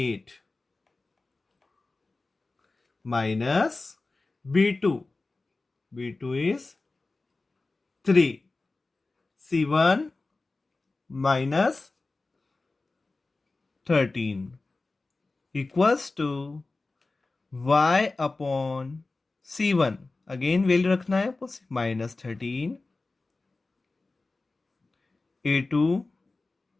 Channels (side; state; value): right; quieter; 3.4 dB